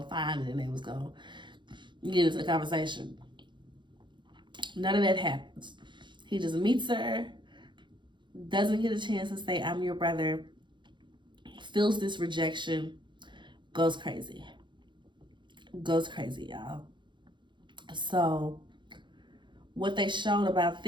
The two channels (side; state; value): left; late; 0.23 ms